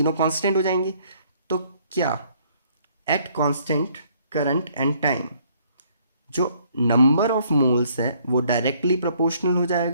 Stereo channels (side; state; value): both; inverted; correlation -0.64